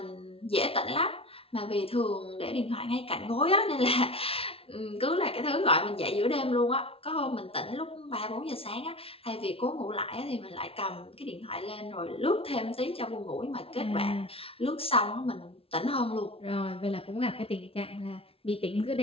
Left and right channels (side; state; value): right; late; 0.27 ms